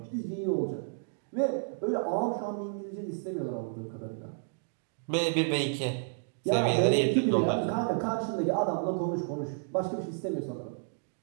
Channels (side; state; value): left; silent; digital silence